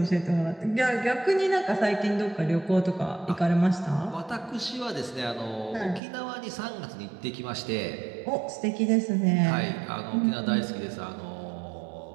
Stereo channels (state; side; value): drops out; left; at 6.0 s